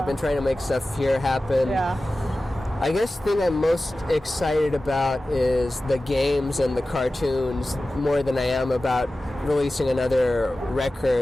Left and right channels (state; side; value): normal; both; correlation 0.95